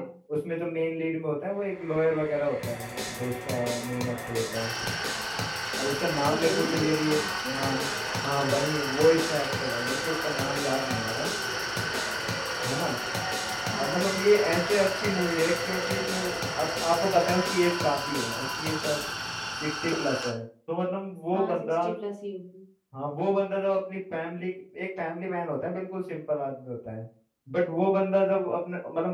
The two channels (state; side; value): identical; both; correlation 1.00